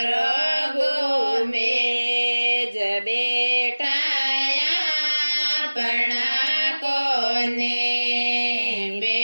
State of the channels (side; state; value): both; inverted; correlation -1.00